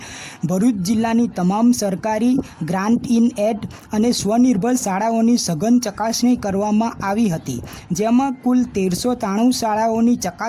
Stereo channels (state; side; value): identical; both; correlation 1.00